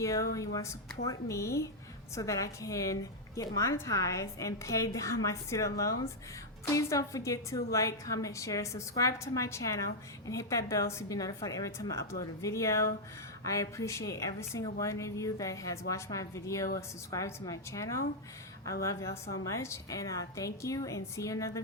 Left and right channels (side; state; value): both; normal; correlation -0.03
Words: and you want to support me so that I can get monetized and pay down my student loans, please don't forget to like, comment, share, subscribe to my channel, and hit that bell so you'll be notified every time I upload a video. I appreciate every single one of you that has watched my video or subscribed to my channel. I love y'all so much, and thank you, and see you in another